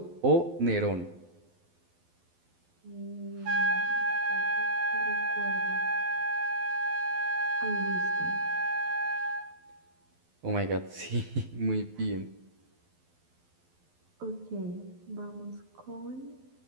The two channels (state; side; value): late; left; 12 ms